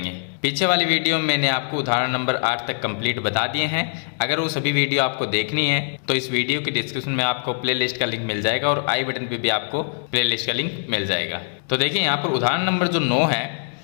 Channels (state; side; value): silent; right; digital silence